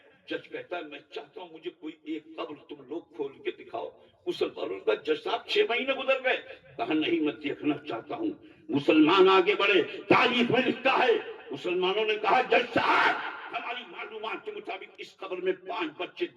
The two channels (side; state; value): both; identical; correlation 1.00